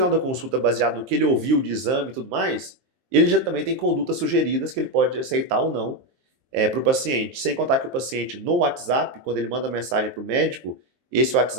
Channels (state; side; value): late; left; 23 ms